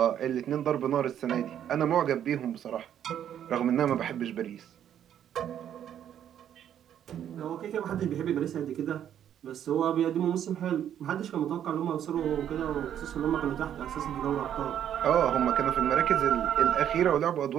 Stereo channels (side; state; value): left; quieter; 10.0 dB